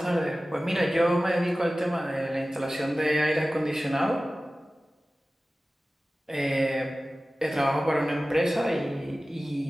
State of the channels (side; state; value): both; normal; correlation 0.96